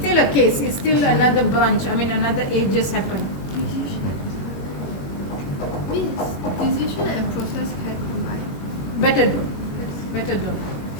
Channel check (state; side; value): late; right; 21 ms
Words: a case. It's still another branch. I mean, another ages happen. Means decision and process can combine. Better do. Better do.